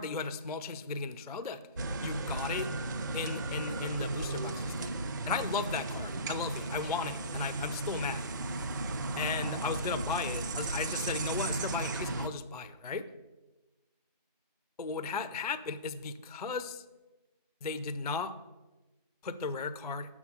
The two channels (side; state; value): both; inverted; correlation -0.34